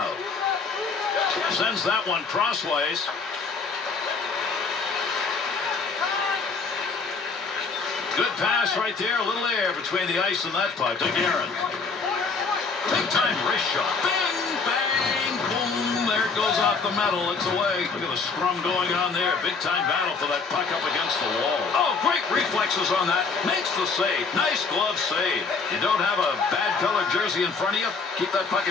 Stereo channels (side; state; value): right; quieter; 4.7 dB